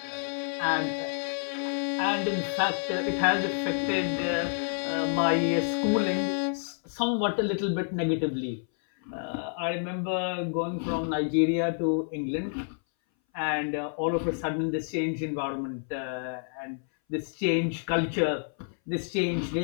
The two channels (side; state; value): right; silent; 59 dB below the other